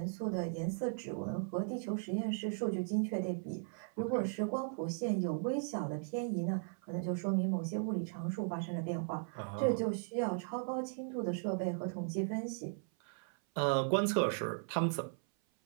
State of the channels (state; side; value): silent; left; 53 dB below the other